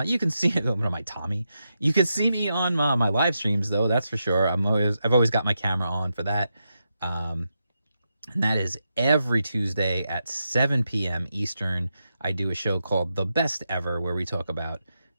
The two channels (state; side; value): inverted; both; correlation -0.86